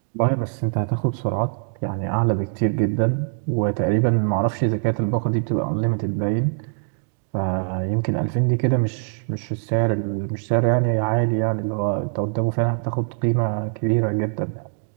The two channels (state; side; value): silent; left; 64 dB below the other